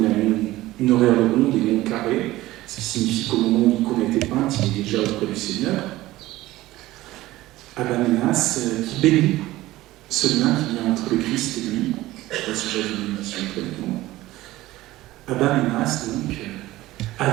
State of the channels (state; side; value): quieter; left; 17.0 dB